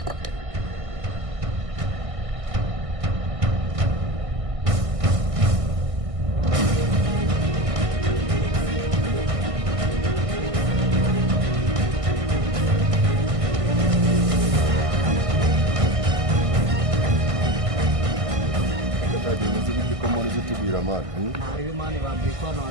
Tubwira mani Naribi mani bambwiye ko hano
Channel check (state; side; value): late; left; 1.6 ms